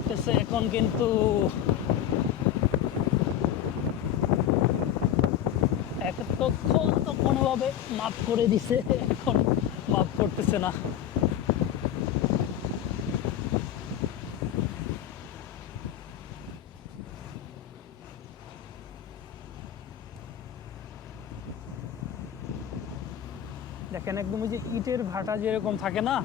এখন কিন্তু এতক্ষণ তো কোনোভাবে মাফ করে দিছে, এখন মাফ করতেছে না। দেখেন একদম ওই যে ইটের ভাটা যেরকম থাকে না,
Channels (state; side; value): quieter; right; 10.5 dB